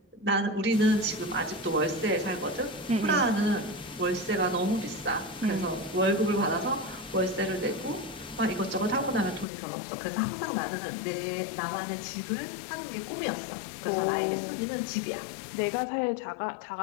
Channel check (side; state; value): right; drops out; at 9.5 s